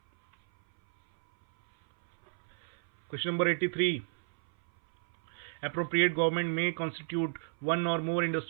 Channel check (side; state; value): left; silent; 57 dB below the other